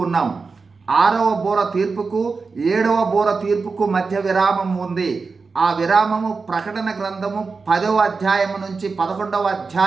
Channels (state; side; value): quieter; left; 4.5 dB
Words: ఉన్నాం. 6వ బూర తీర్పుకు 7వ బూర తీర్పుకు మధ్య విరామం ఉంది. ఆ విరామము ప్రకటన గ్రంథము 10వ అధ్యాయము నుంచి 11వ